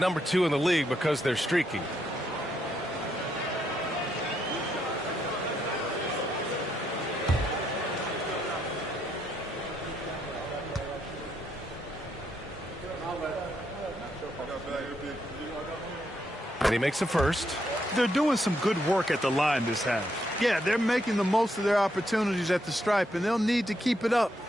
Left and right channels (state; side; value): normal; both; correlation 0.77